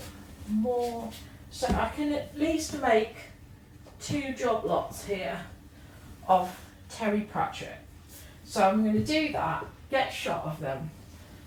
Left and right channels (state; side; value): identical; both; correlation 1.00